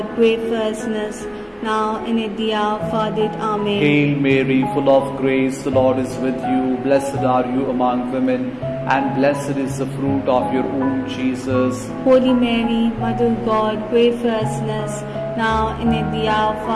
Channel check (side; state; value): both; identical; correlation 1.00